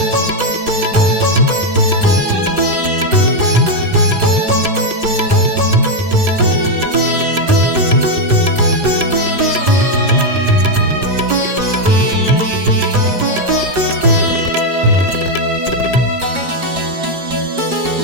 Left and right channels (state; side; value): late; left; 4.9 ms